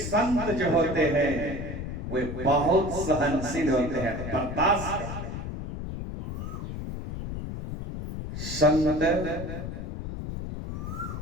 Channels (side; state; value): left; noise; rumble, 6 dB below the sound